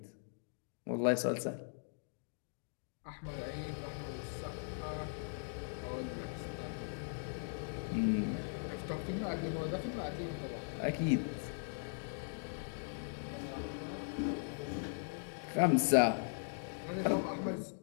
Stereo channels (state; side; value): silent; right; digital silence